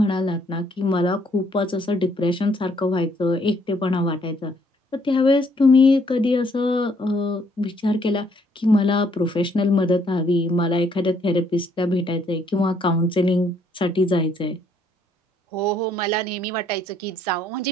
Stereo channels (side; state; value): both; normal; correlation 0.67